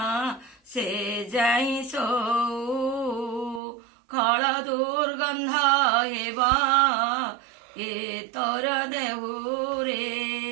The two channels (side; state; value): left; drops out; at 3.6 s